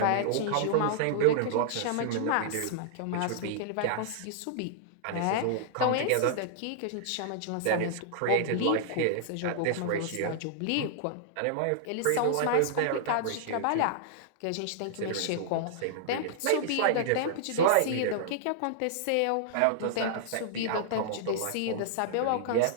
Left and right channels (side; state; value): both; different; correlation -0.01